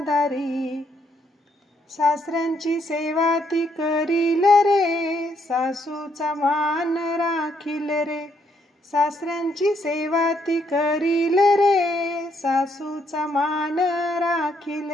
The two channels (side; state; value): both; normal; correlation 0.72